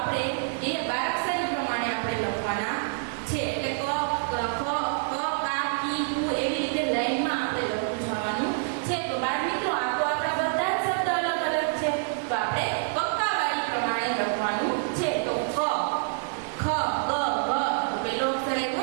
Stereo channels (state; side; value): silent; left; 60 dB below the other